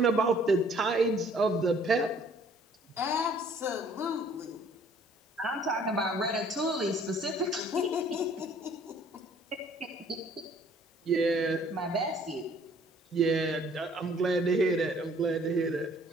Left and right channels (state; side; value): normal; both; correlation 0.58